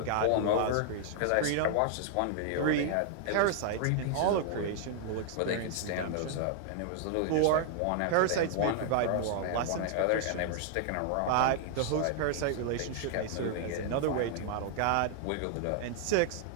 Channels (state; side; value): different; both; correlation 0.00